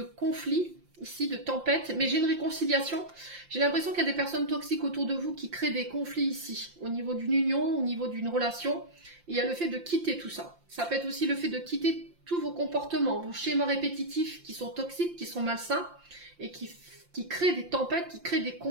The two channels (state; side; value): late; left; 5.7 ms